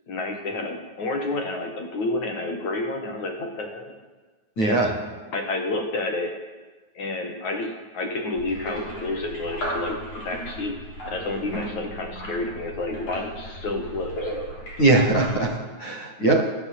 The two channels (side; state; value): right; late; 9.4 ms